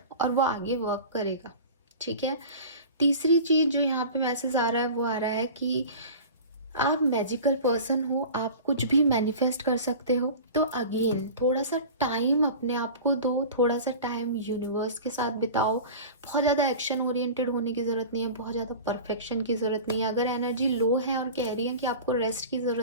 और वो आगे वर्क करेगा। ठीक है, तीसरी चीज जो यहाँ पे मैसेज आ रहा है वो आ रहा है कि आप मैजिकल पर्सन हो, आप कुछ भी मैनिफेस्ट कर सकते हो। तो अगेन थोड़ा सा टाइम अपने आप को दो, थोड़ा सा टाइम यूनिवर्स के साथ बिताओ। बहुत ज़्यादा एक्शन ओरिएंटेड होने की ज़रूरत नहीं है, बहुत ज़्यादा परफेक्शन की ज़रूरत नहीं है। अगर एनर्जी लो है और कह रही है कि आपको रेस्ट की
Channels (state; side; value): inverted; both; correlation -0.36